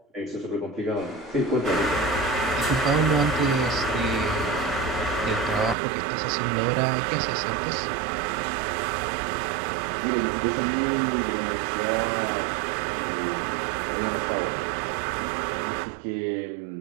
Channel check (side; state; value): left; drops out; at 5.8 s